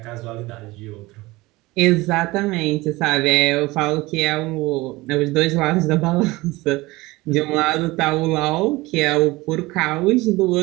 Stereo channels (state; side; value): quieter; left; 20.8 dB